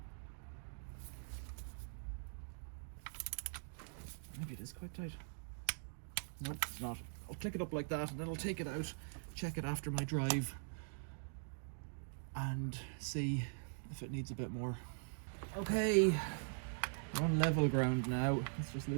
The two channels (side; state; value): left; silent; digital silence